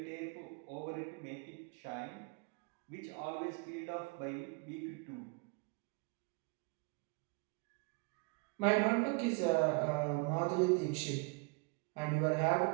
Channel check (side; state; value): left; quieter; 30.9 dB